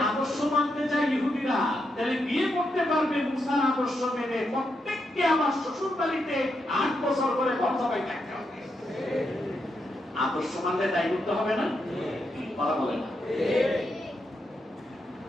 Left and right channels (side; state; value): both; normal; correlation 0.83